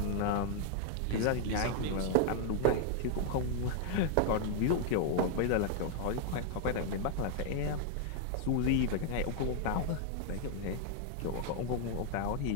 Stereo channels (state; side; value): different; both; correlation 0.00